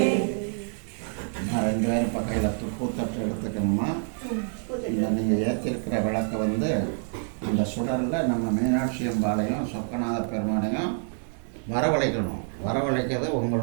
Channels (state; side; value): silent; left; 55 dB below the other